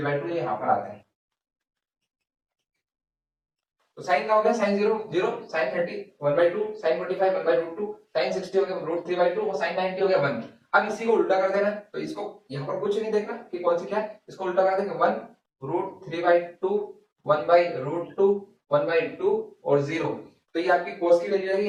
ये यहाँ पर आता है। तो साइन का हो गया साइन 0 0, साइन 30 1/2, साइन 45 1/√2, साइन 60 हो गया √3/2 और साइन 90 हो गया 1। अब इसी को उल्टा कर देना, तो इसको यहाँ पर कुछ नहीं देखना कि कौन सी क्या है, इसको उल्टा कर देंगे 1 √3/2 1/√2 1/2 और 0। तो ये आपकी cos की वैल्यू आएगी,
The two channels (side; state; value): both; identical; correlation 1.00